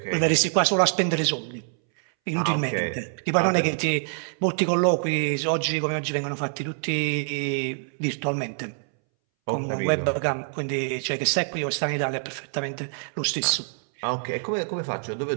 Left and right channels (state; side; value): silent; left; 61 dB below the other